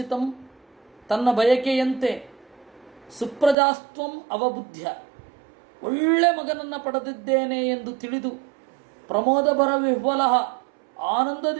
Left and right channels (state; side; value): drops out; left; at 3.6 s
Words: ತನ್ನ ಬಯಕೆಯಂತೆ ಸುಪ್ರಜಾಸ್ತ್ವಂ ಅವಬುದ್ಧ್ಯ ಒಳ್ಳೆ ಮಗನನ್ನು ಪಡೆದಿದ್ದೇನೆ ಎಂದು ತಿಳಿದು ಪ್ರಮೋದಭರ ವಿಹ್ವಲ